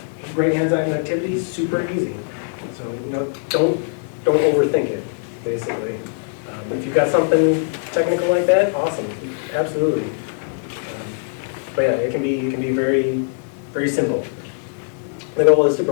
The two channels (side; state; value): right; silent; digital silence